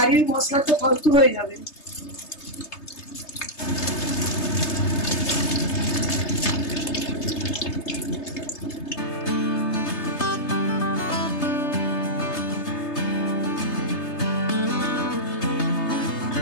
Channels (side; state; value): right; late; 3.3 ms